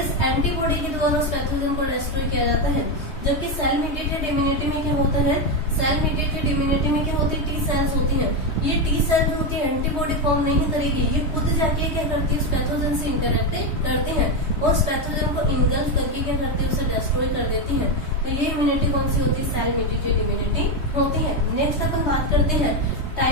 एंटीबॉडी के द्वारा उस पैथोजन को डिस्ट्रॉय किया जाता है। जबकि सेल मीडिएटेड इम्यूनिटी में क्या होता है, सेल मीडिएटेड इम्यूनिटी में क्या होती है, टी सेल्स होती है। ये टी सेल जो होती है एंटीबॉडी फॉर्म नहीं करेगी, ये खुद जाके क्या करती है, उस पैथोजन से इंटरेक्ट करती है और उस पैथोजन को इनगल्फ करके क्या करती है, उसे डिस्ट्रॉय कर देती है। तो ये इम्यूनिटी कौन सी होती है, सेल मीडिएटेड इम्यूनिटी होती है। नेक्स्ट अपन बात करते हैं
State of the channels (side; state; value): right; late; 3.2 ms